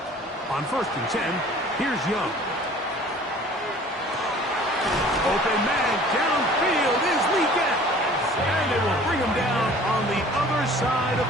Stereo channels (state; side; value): normal; both; correlation 0.49